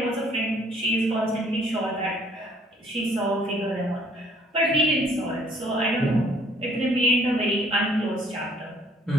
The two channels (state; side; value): normal; both; correlation 0.60